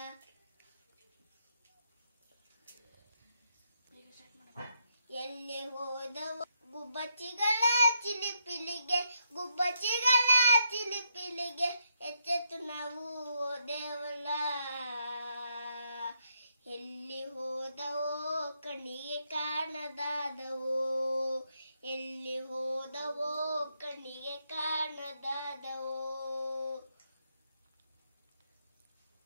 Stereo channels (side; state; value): both; inverted; correlation -0.78